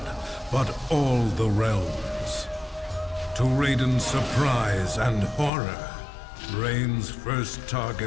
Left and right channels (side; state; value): right; drops out; at 5.5 s